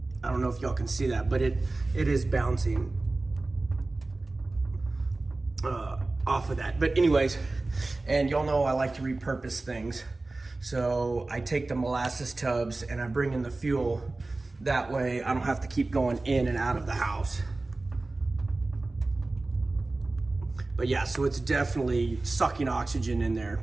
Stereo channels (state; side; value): quieter; left; 3.2 dB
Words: I don't know if y'all can see that, but it is bouncing off of that. But anyways, and y'all know I like to repurpose things. So I take the molasses tubs and I bring in the fuel. That way I don't have to keep going in and out of the house. But yeah, so it's definitely sucking oxygen in there